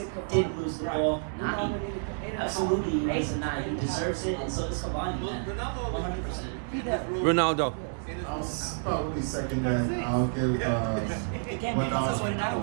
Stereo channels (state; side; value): silent; left; digital silence